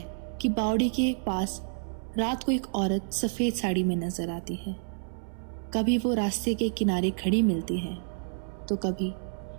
कि बावड़ी के पास रात को एक औरत सफ़ेद साड़ी में नजर आती है। कभी वो रास्ते के किनारे खड़ी मिलती है तो कभी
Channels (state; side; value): silent; left; 58 dB below the other